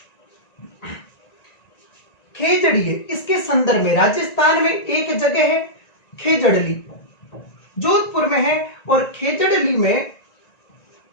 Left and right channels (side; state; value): right; late; 1.9 ms